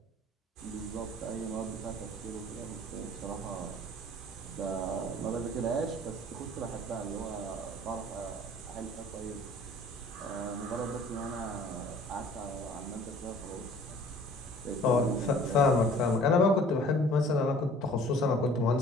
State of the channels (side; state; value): both; normal; correlation 0.50